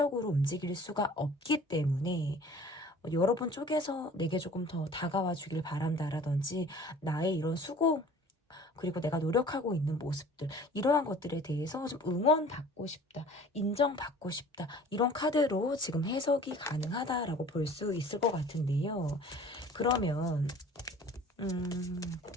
움직일 수가 없기 때문에 여러분 쪽에서 내게 조금 더 다가와 주길 바란다라든지 나의 이런 수고 그리고 내가 노력하고 있는 모습들 이러한 것들에 대해서 좀 응원받고 싶다, 인정받고 싶다 이런 카드로 지금 해석이 가능하다라고 볼 수 있을 것 같은데요. 그러면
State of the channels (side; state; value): both; normal; correlation 0.47